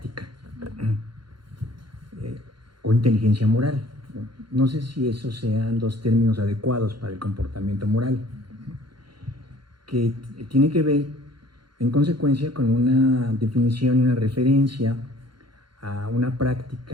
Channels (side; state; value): left; late; 0.73 ms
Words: o inteligencia moral. No sé si esos sean dos términos adecuados para el comportamiento moral, que tiene que ver en consecuencia con una definición y una referencia a una